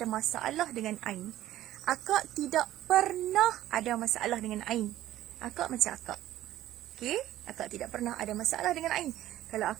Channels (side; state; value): left; quieter; 13.8 dB